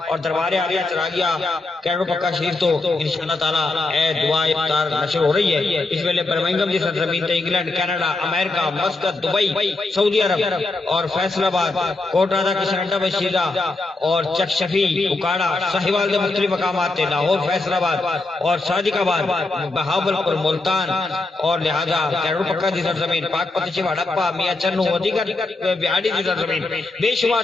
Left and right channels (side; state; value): right; quieter; 3.2 dB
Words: اور دربار عالیہ چراغیہ کروڑ پکا شریف تو انشاءاللہ تعالیٰ اے دعائے افطار نشر ہو رہی ہے۔ اس ویلے برمنگھم کی سرزمین تے انگلینڈ، کینیڈا، امریکہ، مسقط، دبئی، سعودی عرب اور فیصل آباد، کوٹا دا کشنڈا بشیدہ اور چکشفی، اکاڑا، ساہیوال کے مختلف مقامات تے لاہور، فیصل آباد اور صادق آباد، بہاولپور، ملتان اور لہذا کروڑ پکا دی سرزمین، پاک پتچی، ہڑپا، میاں چنو، دیگر بہاڑی دی سرزمین، بے شمار